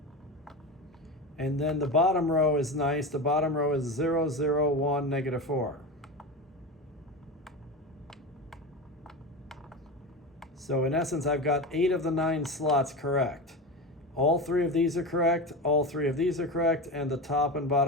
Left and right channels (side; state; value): both; normal; correlation 0.24